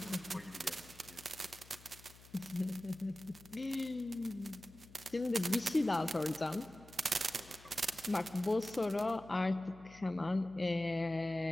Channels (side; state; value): left; noise; hum, 21 dB below the sound